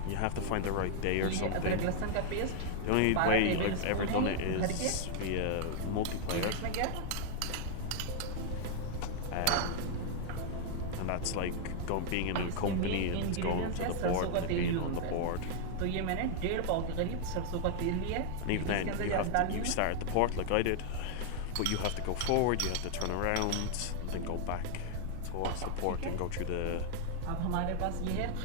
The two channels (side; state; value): both; different; correlation 0.00